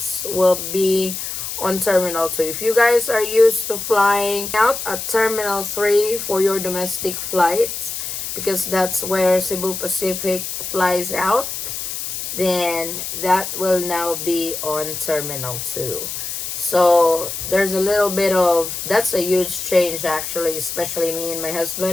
will be on Terminal 2. If you guys are used to flying out at Terminal 3 for your domestic flights, because that's where Cebu Pacific flies out, then that will now be on Terminal 2. So there's a little bit of, that's a huge change actually, especially me and my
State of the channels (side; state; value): left; noise; hiss, 5 dB below the sound